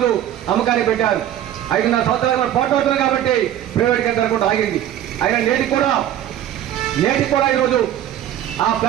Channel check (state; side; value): quieter; left; 11.6 dB